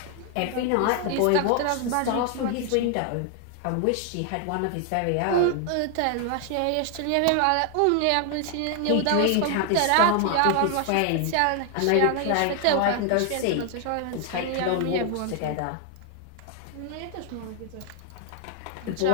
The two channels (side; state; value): both; different; correlation 0.00